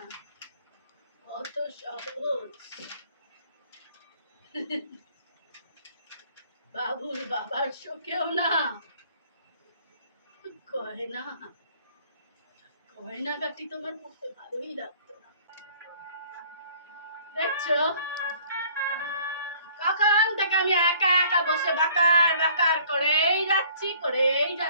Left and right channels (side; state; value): both; inverted; correlation -0.56